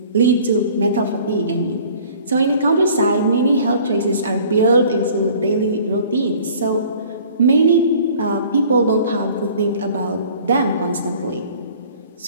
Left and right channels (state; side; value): inverted; both; correlation -0.51